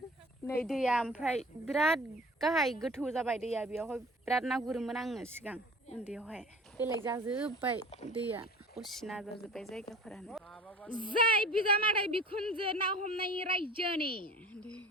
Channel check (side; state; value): both; normal; correlation 0.43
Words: नै दैया ओमफ्राय बिराद गाहाय गोथौ जाबाय दैया बेयावहाय बिराद ना गुरोमोन आङो सिगां उन्दैयावहाय बेलेग जाजोब्बाय दैया असिना जाजोब्बाय जायगाफोरानो जाय बिजामादै बिखुनजो ना हमनायनि रायजोनि